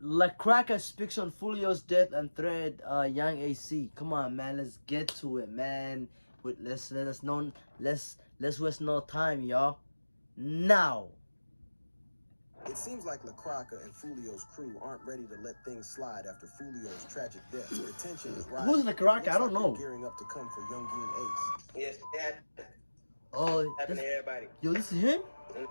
Cracka speaks on Foolio's death and thread Young AC. Come on, man, let's get to it, man. Let's waste no time, y'all. Now. It seems like Cracka and Foolio's crew aren't ready to let things slide after Foolio's tragic death. The tension is rising. Who's Cracka? I don't know. Gearing up to come for Yungeen Ace. Yes, that Happened to everybody. Yo, this is him?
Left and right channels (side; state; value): both; inverted; correlation -1.00